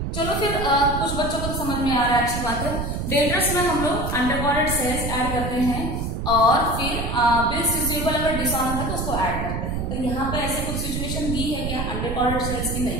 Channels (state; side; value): noise; right; rumble, 3 dB below the sound